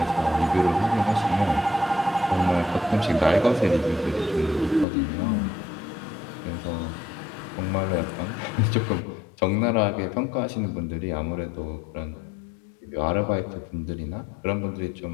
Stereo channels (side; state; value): right; drops out; at 4.9 s